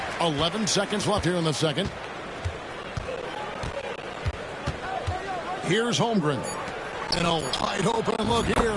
11 seconds left here in the second. Here's Holmgren. And a wide open look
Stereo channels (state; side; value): identical; both; correlation 1.00